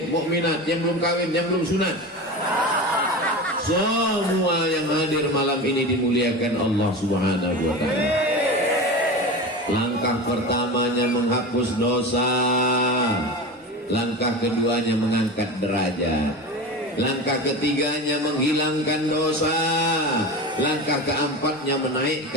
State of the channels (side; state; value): both; normal; correlation 0.28